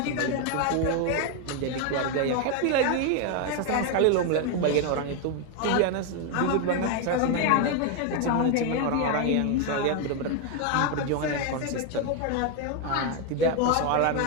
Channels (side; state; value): both; different; correlation 0.01